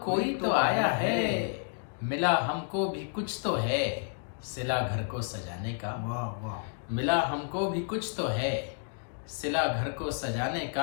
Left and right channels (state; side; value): silent; right; 57 dB below the other